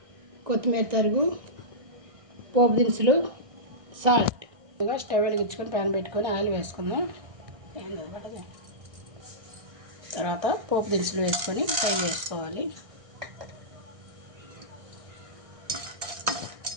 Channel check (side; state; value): left; late; 1.6 ms